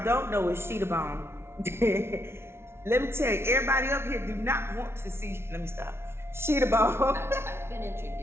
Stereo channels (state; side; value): late; left; 0.12 ms